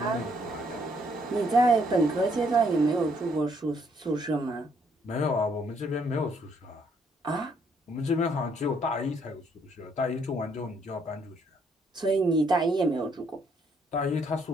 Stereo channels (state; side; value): normal; both; correlation 0.69